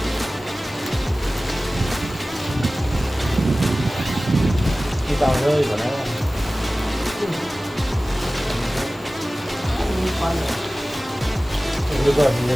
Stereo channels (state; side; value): normal; both; correlation 0.97